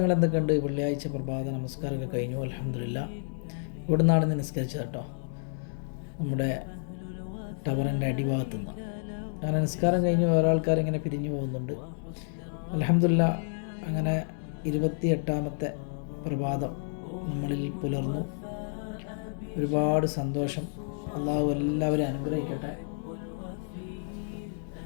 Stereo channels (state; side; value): silent; right; digital silence